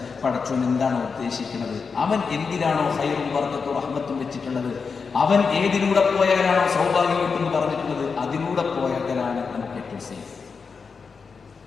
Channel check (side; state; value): right; quieter; 5.3 dB